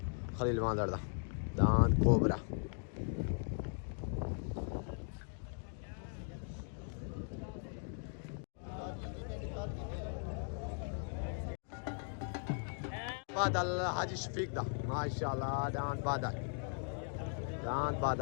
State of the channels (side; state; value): right; silent; 52 dB below the other